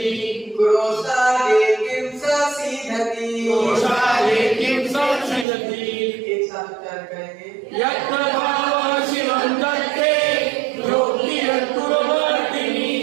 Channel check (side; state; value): left; drops out; at 5.5 s